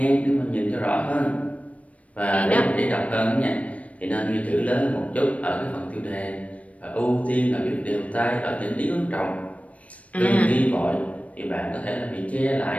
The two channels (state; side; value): late; right; 0.066 ms